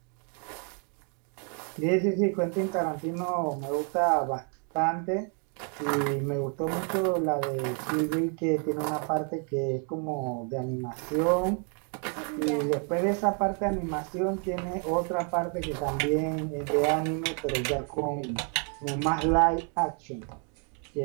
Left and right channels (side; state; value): left; quieter; 39.8 dB